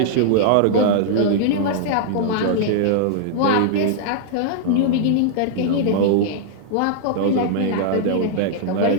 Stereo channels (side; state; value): both; different; correlation -0.01